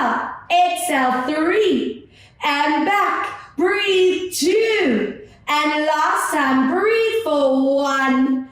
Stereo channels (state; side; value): identical; both; correlation 1.00